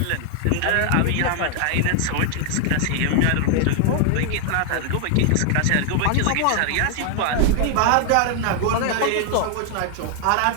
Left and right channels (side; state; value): both; different; correlation 0.00